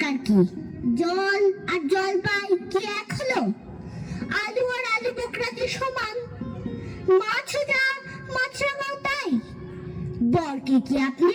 কি? জল আর জলপাই কি এক হলো? আলু আর আলু বোকরা কি সমান? মাছ যা মাছরাঙাও তাই। বরকে কি আপনি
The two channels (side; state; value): both; identical; correlation 1.00